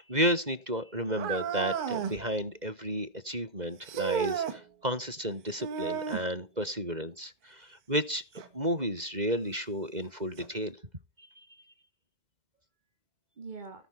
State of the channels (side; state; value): left; late; 2.0 ms